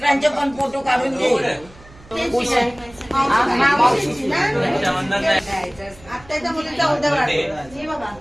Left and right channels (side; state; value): right; noise; hum, 23 dB below the sound